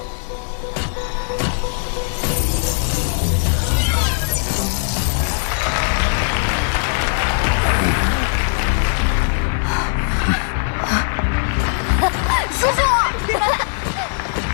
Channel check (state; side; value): silent; right; 66 dB below the other